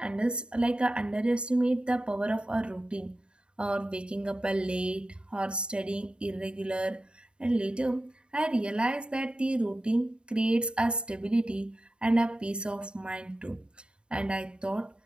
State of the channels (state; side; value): late; left; 0.052 ms